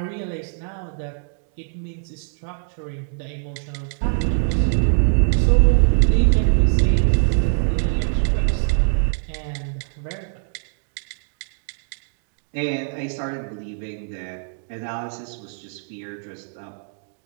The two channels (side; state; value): left; silent; digital silence